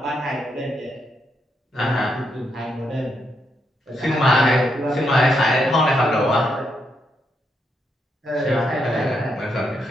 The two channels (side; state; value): both; normal; correlation 0.80